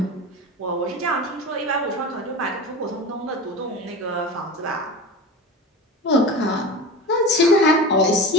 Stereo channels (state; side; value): normal; both; correlation 0.32